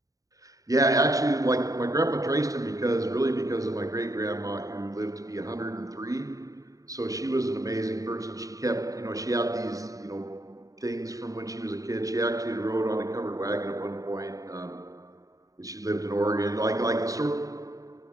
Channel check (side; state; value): left; late; 0.16 ms